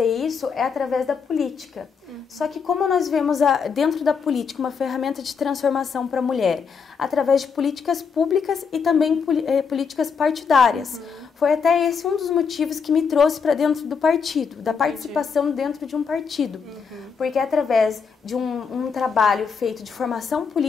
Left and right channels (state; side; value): quieter; right; 5.9 dB